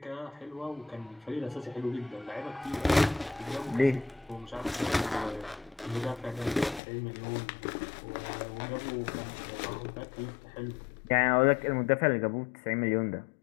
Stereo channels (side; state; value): right; drops out; at 6.8 s